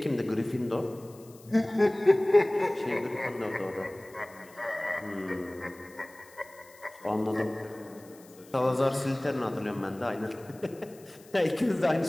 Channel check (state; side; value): noise; left; hiss, 25 dB below the sound